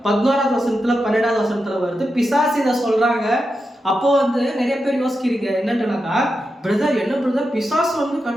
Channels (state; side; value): normal; both; correlation 0.88